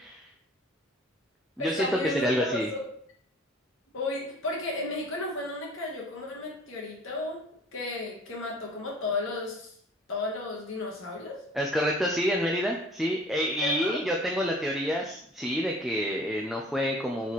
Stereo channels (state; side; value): normal; both; correlation 0.48